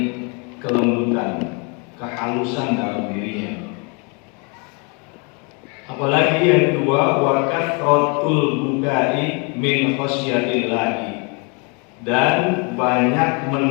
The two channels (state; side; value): quieter; right; 33.6 dB